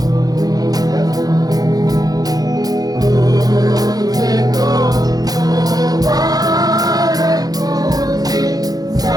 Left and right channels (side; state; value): left; late; 0.18 ms